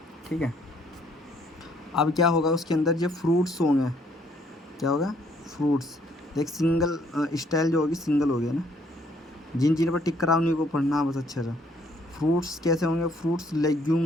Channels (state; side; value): normal; both; correlation 0.65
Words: ठीक है। अब क्या होगा उसके अंदर, जो फ्रूट्स होंगे, क्या होगा, फ्रूट्स। देख सिंगल स्टाइल जो होगी सिंगल हो गया ना, जिन जिन पर टिक करा उन्हीं को पढ़ना बस अच्छे से। फ्रूट्स कैसे होंगे, फ्रूट्स